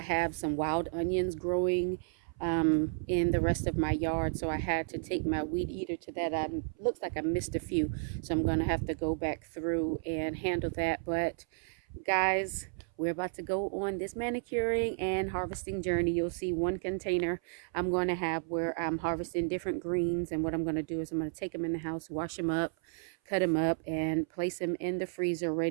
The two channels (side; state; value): left; silent; 56 dB below the other